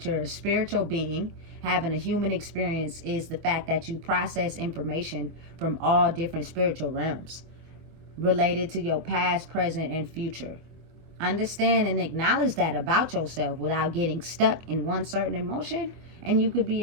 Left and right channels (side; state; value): left; late; 24 ms